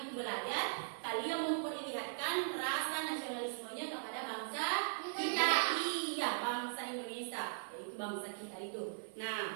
itu belajar, kalian memperlihatkan rasa nasionalismenya kepada bangsa kita. Iya, bangsa Indonesia, yaitu bangsa kita itu.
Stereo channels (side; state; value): left; silent; 52 dB below the other